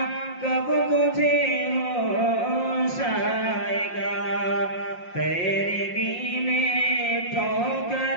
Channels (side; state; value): right; late; 5.6 ms